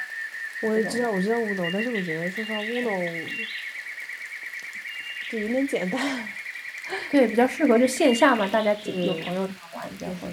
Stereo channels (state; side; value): identical; both; correlation 1.00